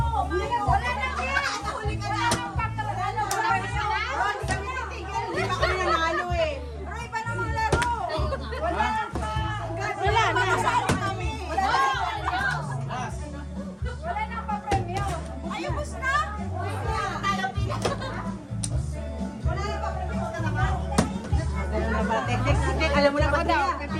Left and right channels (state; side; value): identical; both; correlation 1.00